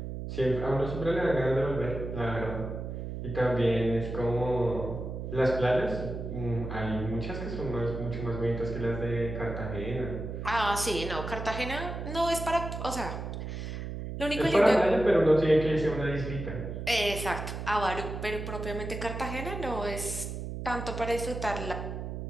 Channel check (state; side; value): noise; right; hum, 6 dB below the sound